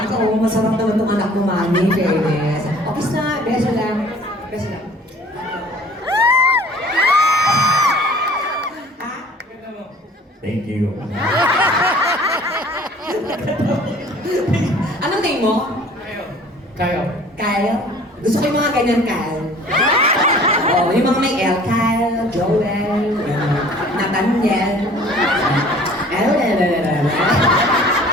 ka, oh. Masarap naman itong anak mo, Mami. Fairness. Okay na, beso lang. Beso lang. Thank you. Anong name mo? Kayo. Kyle? Gusto ko yung mga ganyan, Kyle. Oo, yung mga may L. Kyle, Joel, Nathaniel.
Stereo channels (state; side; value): normal; both; correlation 0.50